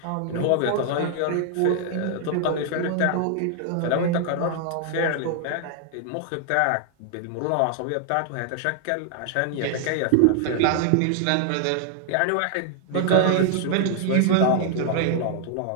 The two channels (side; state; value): both; different; correlation 0.00